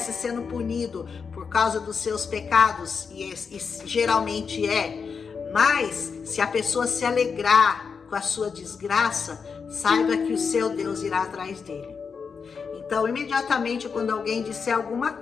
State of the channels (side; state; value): right; quieter; 5.7 dB